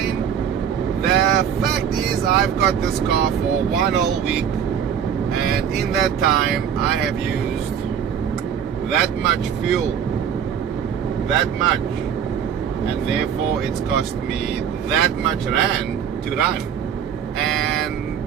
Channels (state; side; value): quieter; left; 8.3 dB